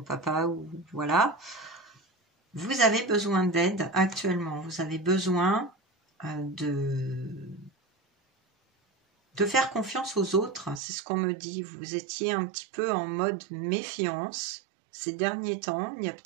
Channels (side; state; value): left; drops out; at 10.8 s